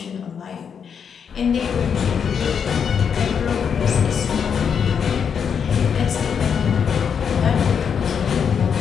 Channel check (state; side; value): quieter; right; 7.1 dB